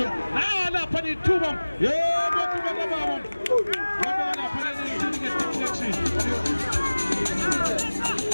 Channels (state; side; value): inverted; both; correlation -1.00